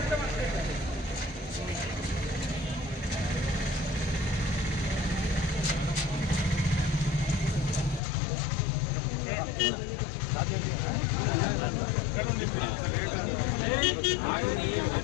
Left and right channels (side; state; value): right; drops out; at 8.0 s